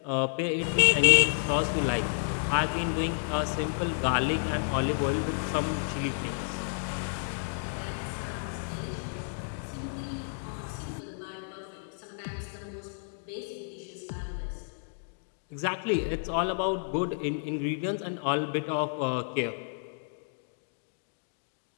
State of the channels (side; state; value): right; silent; digital silence